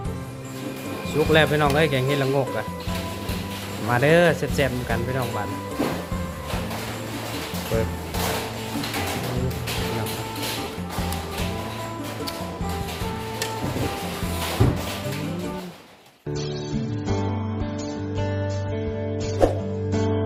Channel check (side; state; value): both; identical; correlation 1.00